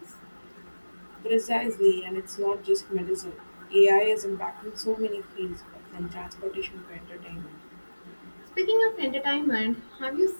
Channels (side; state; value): both; inverted; correlation -1.00